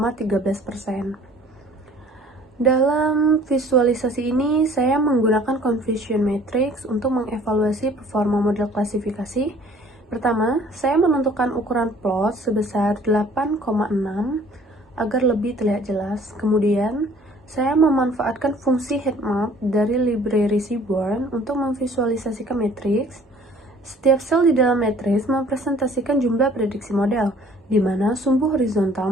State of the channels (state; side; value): normal; both; correlation 0.53